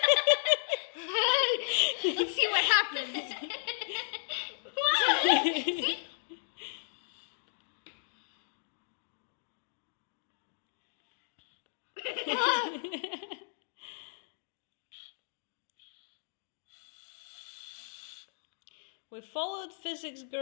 let's see what happens. See? We followed Physics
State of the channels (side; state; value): right; silent; digital silence